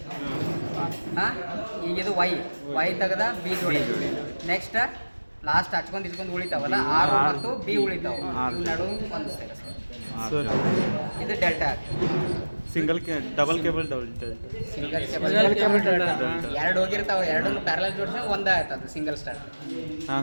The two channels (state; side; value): inverted; both; correlation -1.00